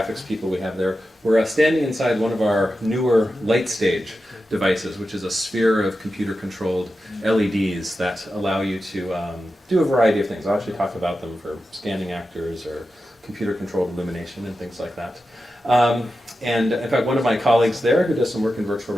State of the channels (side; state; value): both; normal; correlation 0.91